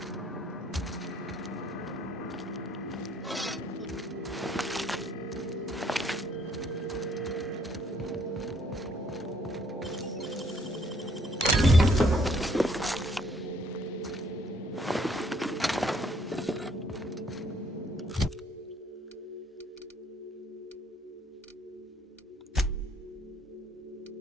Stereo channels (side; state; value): both; normal; correlation 0.65